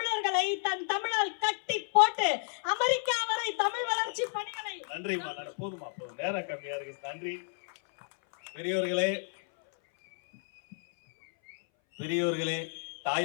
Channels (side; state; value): right; silent; 57 dB below the other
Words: தன் தமிழால் கட்டி போட்டு அமெரிக்கா வரை தமிழ் வளர்ச்சி பணிகளை. நன்றிமா, போதுமா, போதும், நேரம் கம்மியா இருக்கு. நன்றி. பெரியோர்களே, பெரியோர்களே,